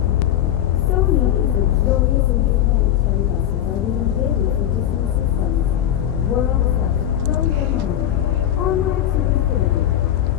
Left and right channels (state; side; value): quieter; right; 11.1 dB